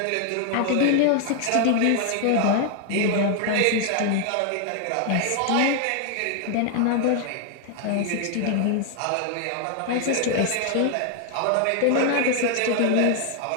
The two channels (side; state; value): both; different; correlation 0.00